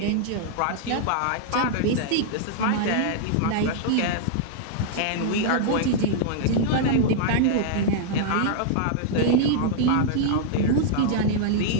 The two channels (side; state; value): both; different; correlation -0.01